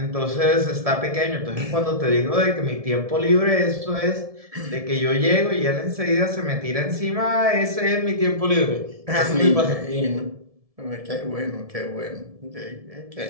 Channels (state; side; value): late; left; 1.7 ms